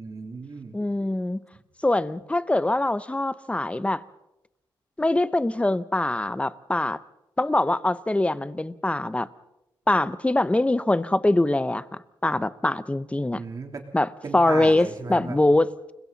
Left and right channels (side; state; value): both; normal; correlation 0.95